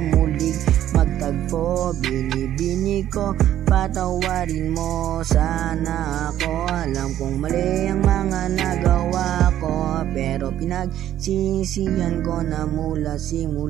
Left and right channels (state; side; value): quieter; left; 11.8 dB